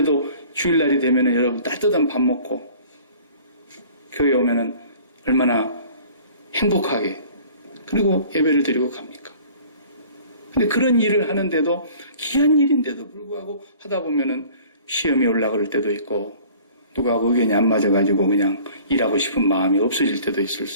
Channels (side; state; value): both; inverted; correlation -0.49